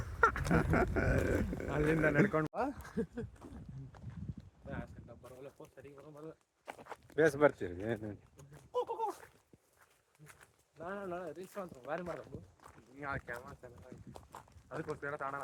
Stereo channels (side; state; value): both; identical; correlation 1.00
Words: ಅಲ್ಲಿಂದ ನಡ್ಕೊಂಡು ಬೇಸ್ ಬರ್ತೀರಿ ರೀಲ್ಸ್ ಅಂತ ಭಾರಿ ಮಾಡೋದು. ಅದಕ್ಕೋಸ್ಕರ ತಾಣ